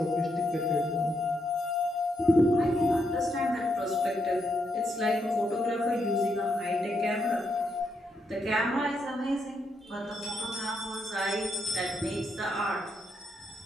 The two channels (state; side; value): normal; both; correlation 0.79